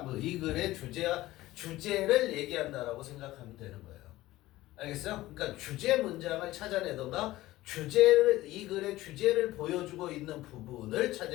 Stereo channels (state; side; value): quieter; right; 16.9 dB